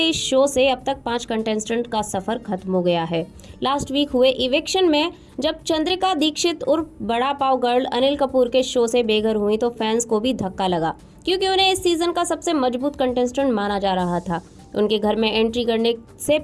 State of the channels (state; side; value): identical; both; correlation 1.00